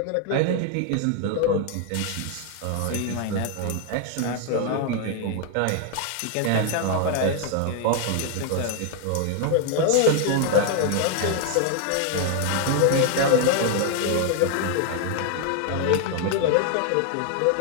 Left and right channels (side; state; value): both; different; correlation 0.00